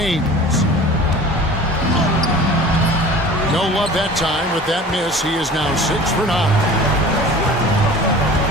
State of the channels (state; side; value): normal; both; correlation 0.42